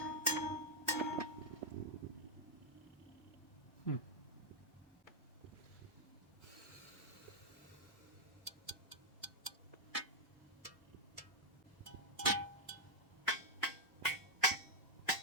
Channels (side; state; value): both; normal; correlation -0.03